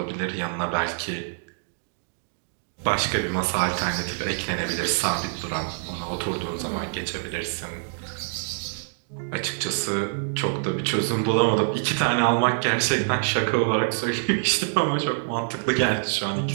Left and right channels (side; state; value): left; silent; digital silence